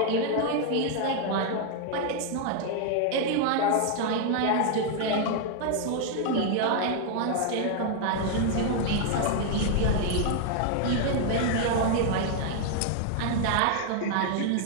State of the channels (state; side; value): different; both; correlation 0.00